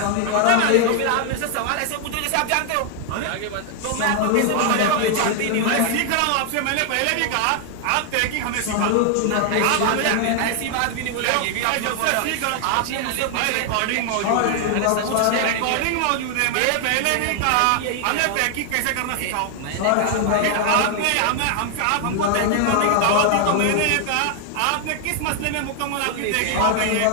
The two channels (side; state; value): both; different; correlation 0.00